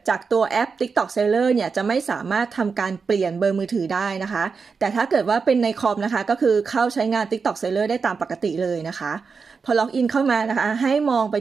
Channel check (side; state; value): left; quieter; 5.2 dB